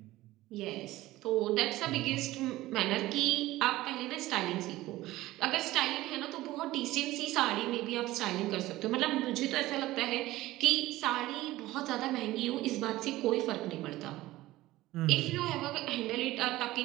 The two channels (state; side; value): quieter; left; 17.1 dB